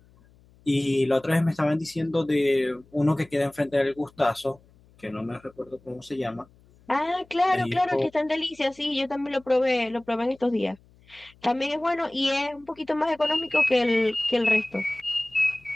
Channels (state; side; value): noise; left; hum, 29 dB below the sound